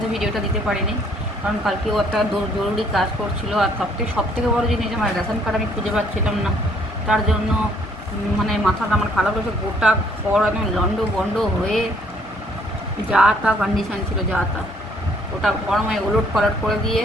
ভিডিওটা দিতে পারিনি, কারণ কালকেও একটা জরুরি কাজ করছিল। আর সব থেকে বড়ো জিনিস, আমার রেশন কার্ড আমি খুঁজে পাচ্ছিলাম না, তার জন্য মানে মাথাটা আমার খারাপ হয়েছে। গোটা ঘর একদম লন্ড বন্ড হয়ে যা তা কন্ডিশান ছিল, যা তা ওটা গরমে ওলট পালট করে দিয়ে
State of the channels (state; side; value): normal; both; correlation 0.64